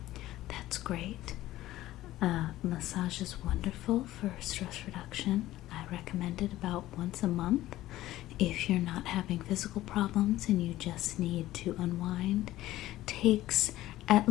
that's great. Massage is wonderful for stress reduction. I recommend it about once a month. If you're not having physical problems and you just need to unwind, takes at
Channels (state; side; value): quieter; right; 15.4 dB